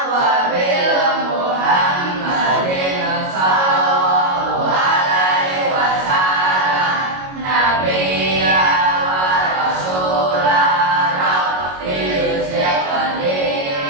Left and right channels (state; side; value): late; left; 22 ms